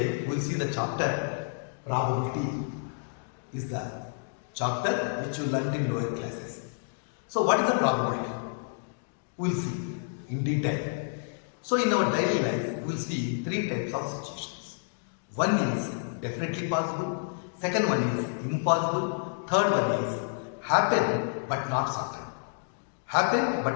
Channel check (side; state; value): right; silent; digital silence